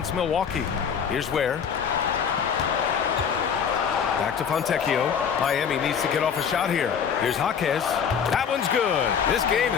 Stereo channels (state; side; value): quieter; right; 7.2 dB